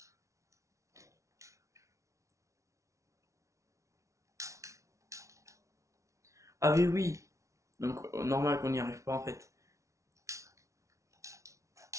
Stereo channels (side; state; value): left; late; 0.15 ms